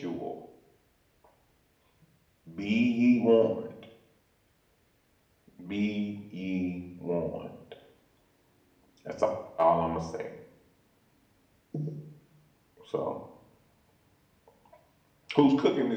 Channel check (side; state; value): both; identical; correlation 1.00